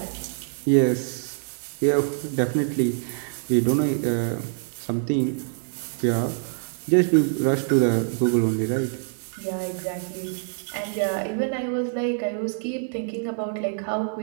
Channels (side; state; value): left; silent; digital silence